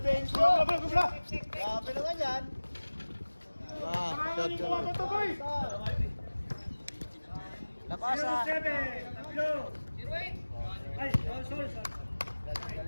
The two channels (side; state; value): both; inverted; correlation -1.00